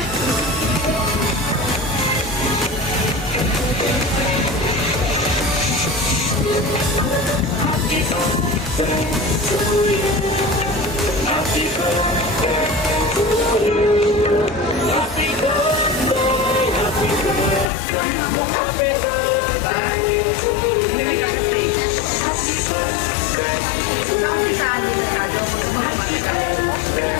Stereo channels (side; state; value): right; drops out; at 17.7 s